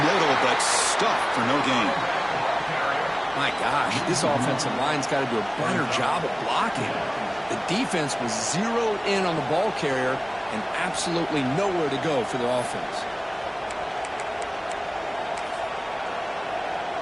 middle, but stuffed for no gain. My gosh, this offensive line's got to do a better job of blocking. The defense was zeroed in on the ball carrier and absolutely nowhere to go for the offense.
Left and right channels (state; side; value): identical; both; correlation 1.00